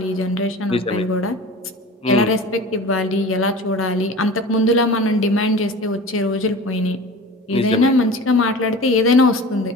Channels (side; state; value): both; normal; correlation 0.37